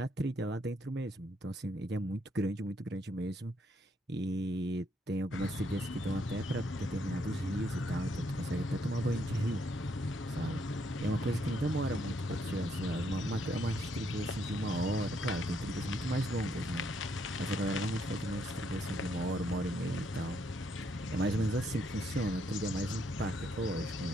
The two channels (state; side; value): normal; both; correlation 0.73